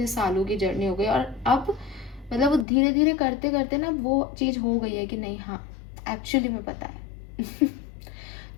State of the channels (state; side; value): drops out; right; at 2.7 s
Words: सालों की जर्नी हो गई, और अब मतलब वो धीरे धीरे करते करते ना वो चीज़ हो गई है कि नहीं, हाँ एक्चुअली में पता है।